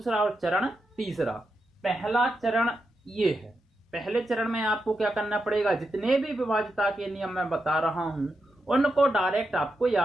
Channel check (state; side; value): normal; both; correlation 0.86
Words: और चरण तीसरा। पहला चरण ये है। पहले चरण में आपको क्या करना पड़ेगा, जितने भी विभाज्यता के नियम मैं बता रहा हूं उनको डायरेक्ट आपको